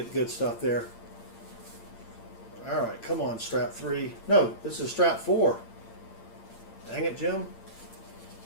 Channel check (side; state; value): right; late; 8.8 ms